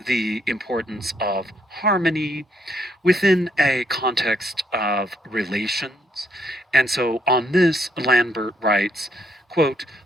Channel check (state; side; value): normal; both; correlation 0.72